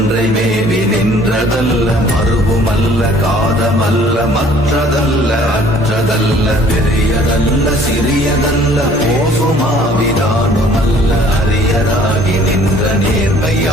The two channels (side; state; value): both; normal; correlation 0.55